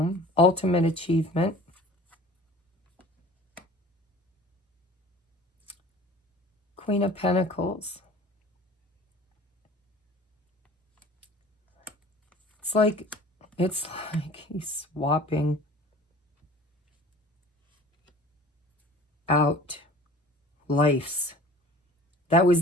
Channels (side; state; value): both; normal; correlation 0.44